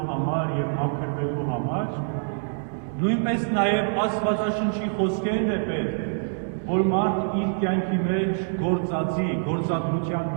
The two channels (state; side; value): silent; left; digital silence